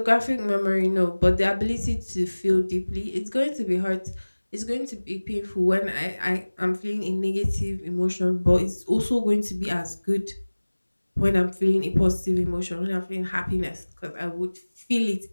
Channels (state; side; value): inverted; both; correlation -1.00